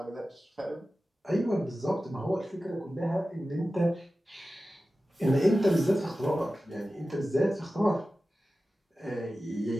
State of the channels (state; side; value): normal; both; correlation 0.95